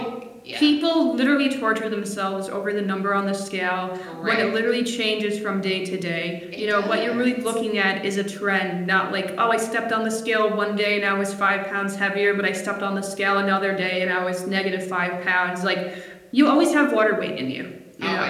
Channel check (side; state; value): both; identical; correlation 1.00